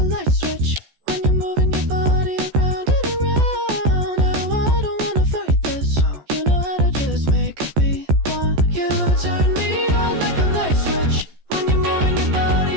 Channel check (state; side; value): late; left; 14 ms